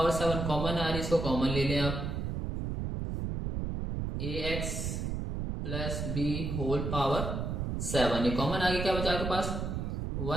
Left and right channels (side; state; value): right; noise; rumble, 2 dB below the sound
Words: 7 common आ रही है, इसको कॉमन ले लें आप, ax plus b whole power 7 ये कॉमन आ गया, क्या बचा आपके पास